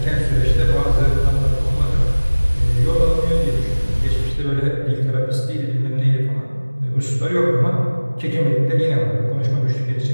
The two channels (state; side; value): inverted; both; correlation -1.00